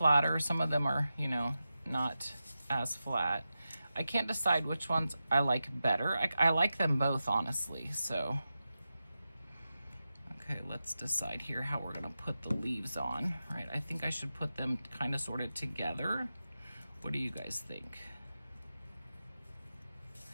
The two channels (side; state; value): both; inverted; correlation -0.92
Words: some of them are, you know, not as flat. I can't decide which ones I like better. I like them both, honestly, so. Okay, let's decide here how we're gonna put the leaves on, right? I think I should put them kind of sorted together. What do you guys think?